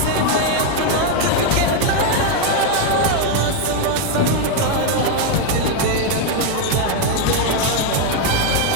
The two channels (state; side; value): different; both; correlation 0.01